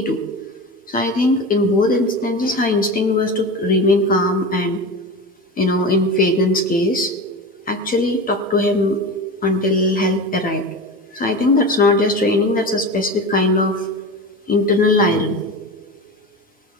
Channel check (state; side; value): normal; both; correlation 0.28